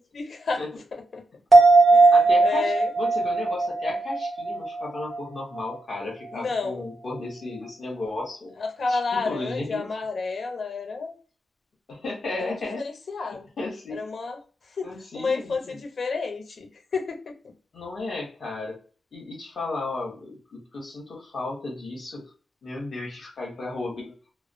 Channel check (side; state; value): both; normal; correlation 0.84